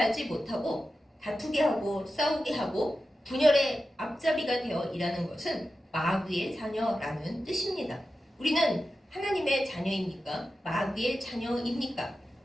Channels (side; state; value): both; normal; correlation 0.92